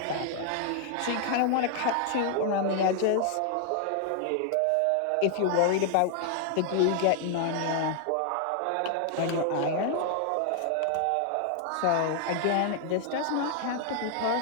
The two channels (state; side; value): different; both; correlation 0.00